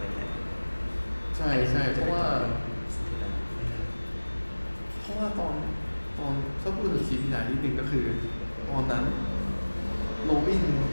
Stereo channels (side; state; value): both; inverted; correlation -1.00